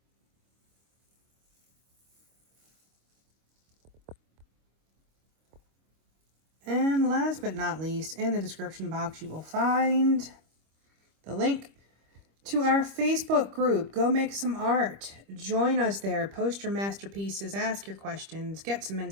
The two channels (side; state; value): left; late; 25 ms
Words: And last but not least, in the description box you will find the link to our Facebook group. Go make some art. Join us there. Post your masterpieces. Ask your questions. Get some